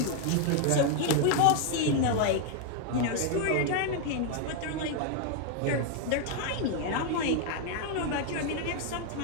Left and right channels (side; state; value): both; different; correlation 0.00